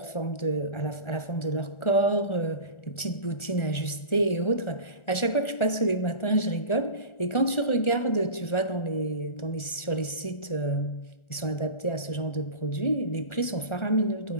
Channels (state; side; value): late; right; 1.4 ms